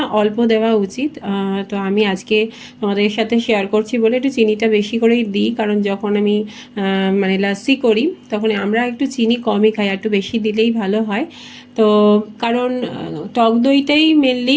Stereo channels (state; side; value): identical; both; correlation 1.00